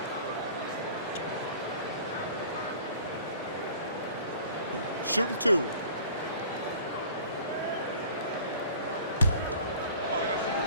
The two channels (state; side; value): inverted; both; correlation -0.47